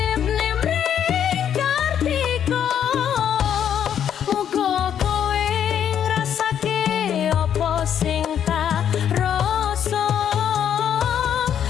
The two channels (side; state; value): right; quieter; 9.2 dB